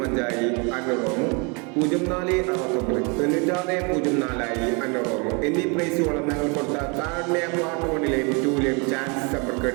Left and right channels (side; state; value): left; quieter; 32.5 dB